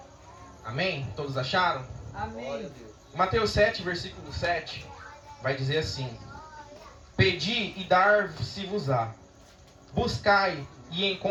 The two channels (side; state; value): both; identical; correlation 1.00